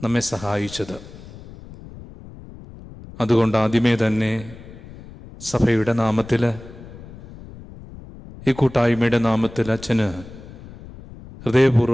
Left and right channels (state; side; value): noise; left; rumble, 17 dB below the sound